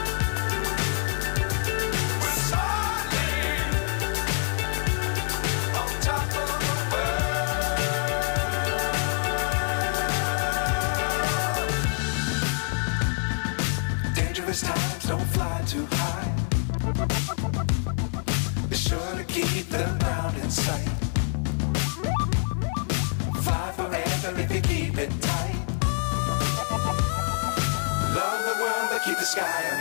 Times don't fly too high. Be sure to keep the ground in sight. Fly forever if you keep it tight. Love the world but keep the sky on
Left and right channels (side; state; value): right; silent; 57 dB below the other